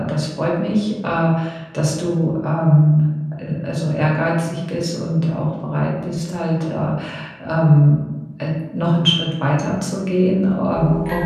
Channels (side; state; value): both; identical; correlation 1.00